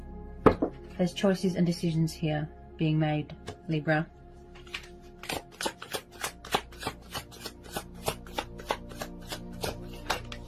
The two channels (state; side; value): identical; both; correlation 1.00